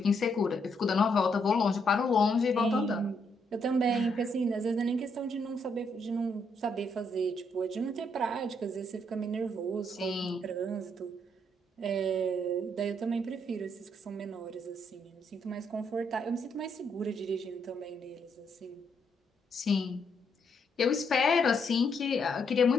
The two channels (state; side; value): normal; both; correlation 0.75